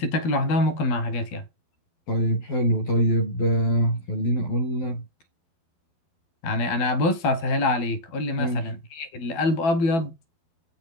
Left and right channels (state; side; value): late; right; 12 ms